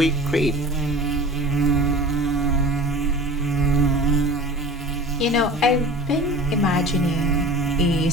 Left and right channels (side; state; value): both; normal; correlation 0.39